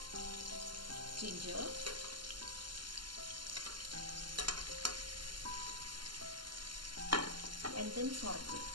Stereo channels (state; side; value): late; left; 0.71 ms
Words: ginger, and then saute